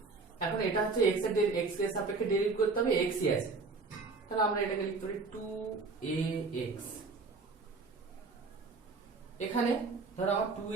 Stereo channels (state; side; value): quieter; left; 4.1 dB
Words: এখন এটা হচ্ছে x এর সাপেক্ষে ডেরিভেটিভ করতে হবে, x ই আছে, তাহলে আমরা এটাকে লিখতে পারি 2ax। এখানে ধরো আমার